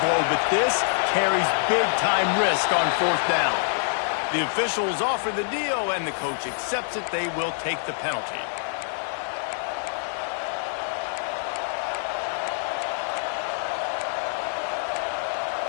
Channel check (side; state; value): right; silent; 61 dB below the other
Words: blow, but this carries big-time risk on 4th down. The officials offer the deal, and the coach accepts it. They will take the penalty.